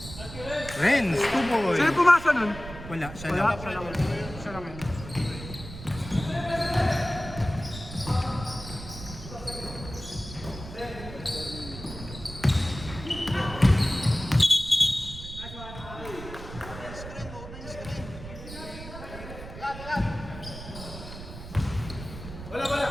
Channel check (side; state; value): right; noise; rumble, 12 dB below the sound